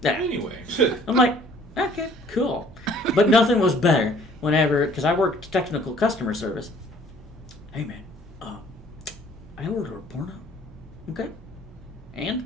yeah. Anyway. I'm like, okay, cool. But nothing was better whenever, because I worked technical customer service. Hey man, I ordered a porno. Okay?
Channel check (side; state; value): both; normal; correlation 0.56